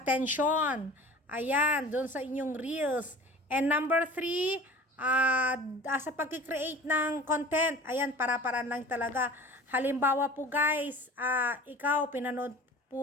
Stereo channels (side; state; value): both; normal; correlation 0.42